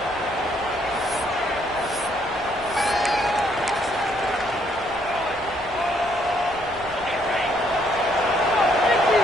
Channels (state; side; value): noise; left; rumble, 21 dB below the sound